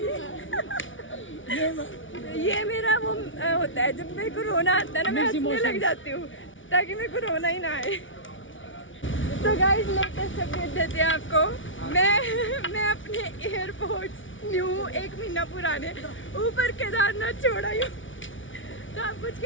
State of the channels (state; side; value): late; right; 0.56 ms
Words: ये मेरा वो होता है, जब मेरे को रोना आता है ना मैं हंसने लग जाती हूँ ताकि मेरे को रोना ही ना आए। तो गाइस लेटेस्ट अपडेट देते हैं आपको। मैं अपने एयरपोर्ट्स न्यू 1 महीना पुराने ऊपर केदारनाथ छोड़ आई हूँ। तो आप कुछ